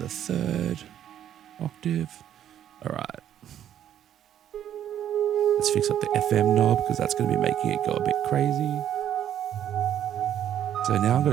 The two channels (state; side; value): quieter; left; 10.5 dB